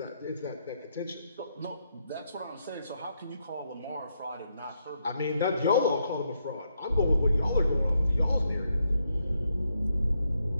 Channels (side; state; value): both; inverted; correlation -0.78